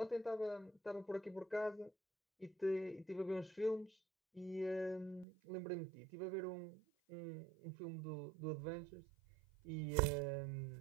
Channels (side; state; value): left; drops out; at 5.2 s